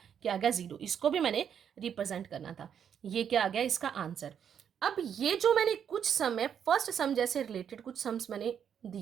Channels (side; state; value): left; quieter; 8.3 dB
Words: क्या आ गया 0, इसको भी मैंने रिप्रेजेंट करना था। ये क्या आ गया इसका आंसर। अब ये जो मैंने कुछ सम है, फर्स्ट सम जैसे रिलेटेड कुछ सम्स मैंने